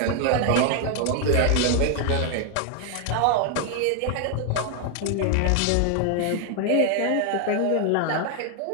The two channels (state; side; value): different; both; correlation 0.00